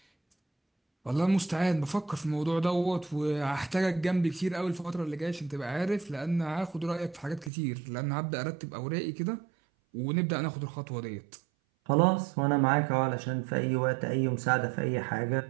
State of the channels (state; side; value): drops out; left; at 7.5 s